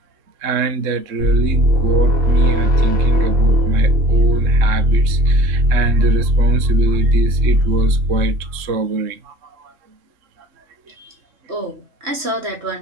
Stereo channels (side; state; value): left; late; 3.2 ms